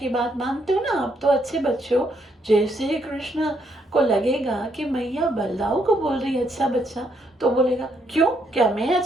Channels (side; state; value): both; normal; correlation 0.74